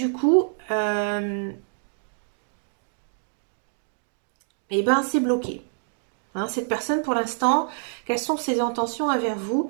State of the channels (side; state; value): left; silent; digital silence